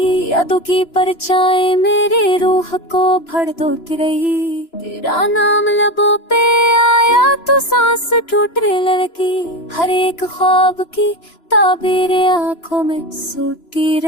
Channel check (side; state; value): right; late; 3.0 ms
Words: यादों की परछाई मेरी रूह को भड़कती रही। तेरा नाम लबों पे आया तो सांस टूटने लगी, हर एक ख्वाब की ताबीर आंखों में सोती